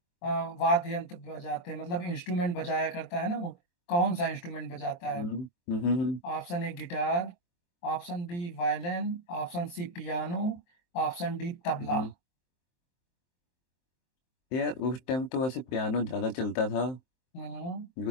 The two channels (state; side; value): late; right; 23 ms